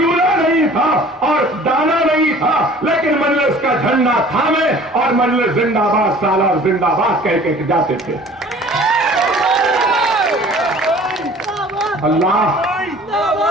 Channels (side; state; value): both; normal; correlation 0.48